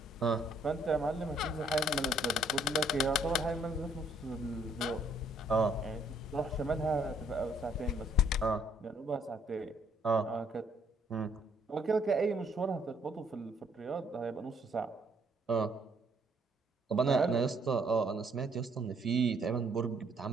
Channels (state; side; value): normal; both; correlation 0.66